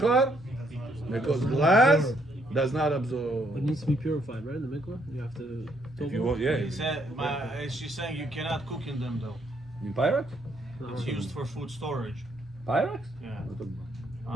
Because glass does not absorb. It needs to be purified, right? In the mikvah, you have to. If you want, yeah. He said, she's saying you cannot cook in them though. In Pyrex? It's used for food storage. Pyrex? Yeah.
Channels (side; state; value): both; normal; correlation 0.71